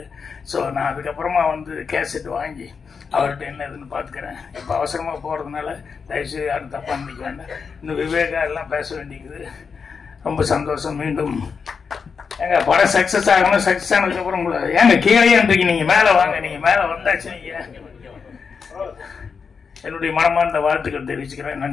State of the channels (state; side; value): quieter; right; 5.7 dB